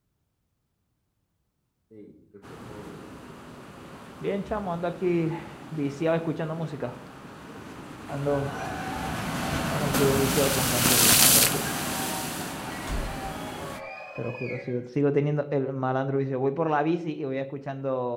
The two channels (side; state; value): both; identical; correlation 1.00